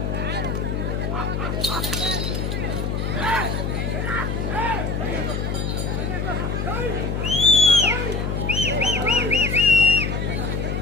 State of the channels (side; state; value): left; noise; hum, 1 dB below the sound